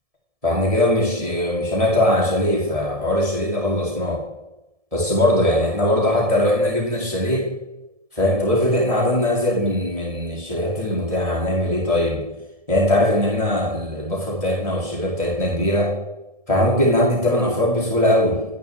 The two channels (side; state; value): left; late; 1.7 ms